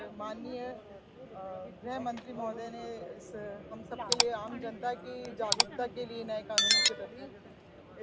माननीय गृह मंत्री महोदय ने इस हम सब के लिए, आम जनता की जागरूकता के लिए नए कानूनों के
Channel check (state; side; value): identical; both; correlation 1.00